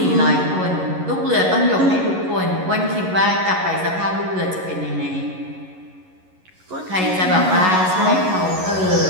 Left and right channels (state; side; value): late; left; 11 ms